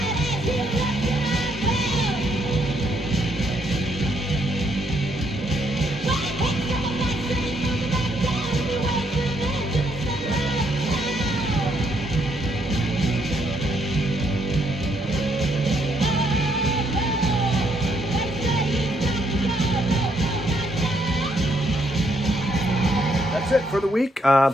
That's it for the week.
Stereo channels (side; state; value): both; normal; correlation 0.73